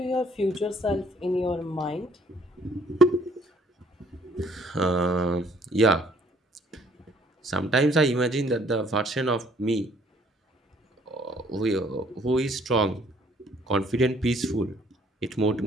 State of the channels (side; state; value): both; normal; correlation 0.61